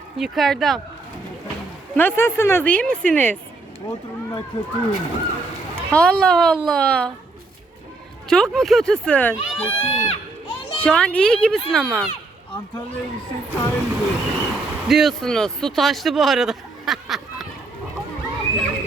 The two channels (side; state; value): left; quieter; 3.4 dB